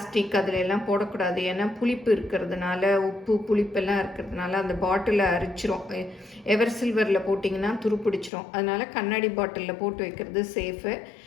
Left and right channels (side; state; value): right; drops out; at 8.3 s